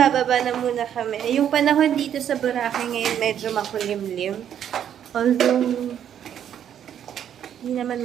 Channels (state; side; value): quieter; left; 9.5 dB